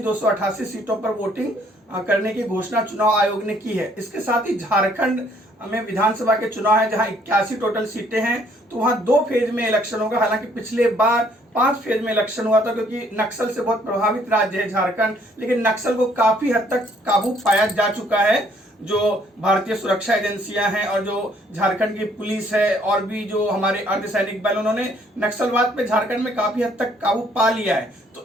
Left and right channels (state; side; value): normal; both; correlation 0.64